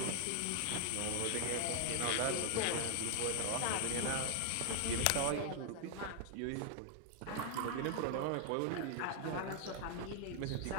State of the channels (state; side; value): different; both; correlation 0.00